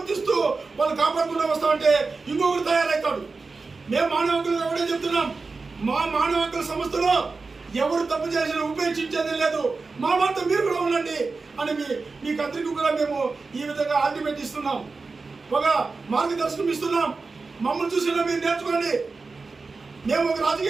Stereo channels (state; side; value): quieter; left; 4.1 dB